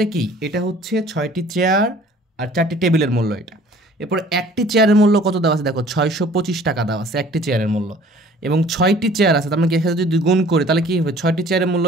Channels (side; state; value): both; normal; correlation 0.52